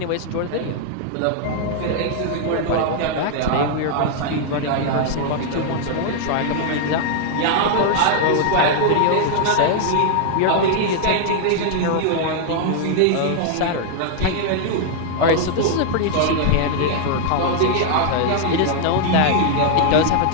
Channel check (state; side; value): different; both; correlation 0.00